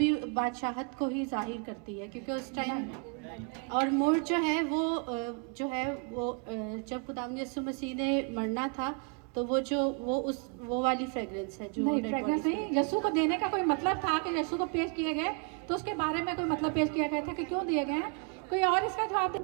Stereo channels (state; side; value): quieter; left; 36.4 dB